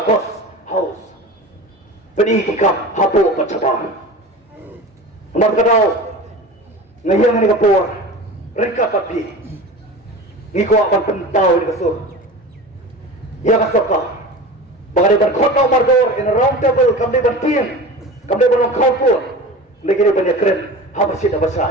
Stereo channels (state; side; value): normal; both; correlation 0.33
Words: house beni kikam hapo pacabar nomor kadau ngayang ni kapor reka papi ngiko akan pentau ni kasur ya kasoka bagay ban khotau margor in a round table kamde ban tiang kamde ban khawpur legene ban yakren habasit